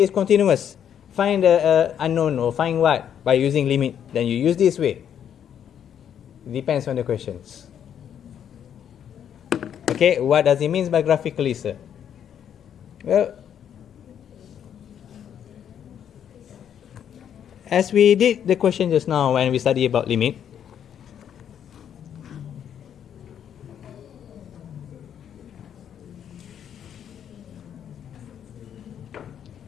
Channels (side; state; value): right; quieter; 9.1 dB